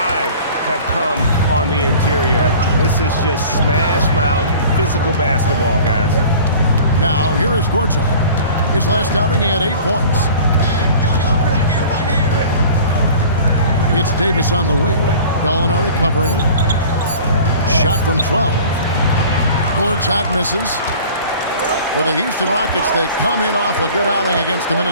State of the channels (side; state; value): both; inverted; correlation -0.43